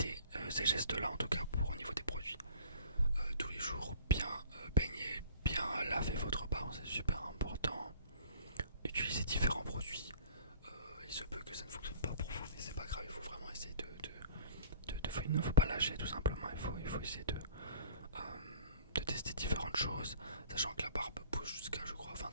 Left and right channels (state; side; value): inverted; both; correlation -0.48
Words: ces gestes-là, en tout cas pour au niveau des produits. Tous les jours, bien baigner, bien laver votre barbe, c'est super important. Utiliser différents produits. Il se peut que ça ne fonctionne pas pour vous, mais c'est pas grave, il faut vraiment essayer il ne faut pas lâcher tout simplement, il faut essayer de tester différentes choses, sachant que la barbe pousse jusqu'à je crois